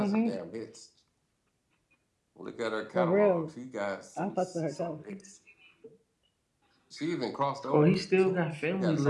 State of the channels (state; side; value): identical; both; correlation 1.00